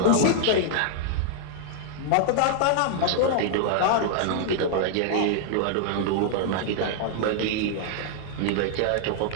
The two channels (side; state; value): both; different; correlation -0.01